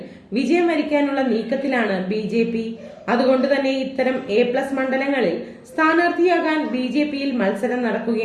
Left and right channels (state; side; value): identical; both; correlation 1.00